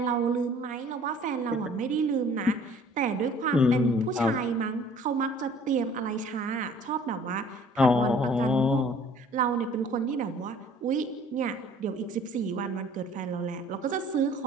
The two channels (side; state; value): both; normal; correlation 0.53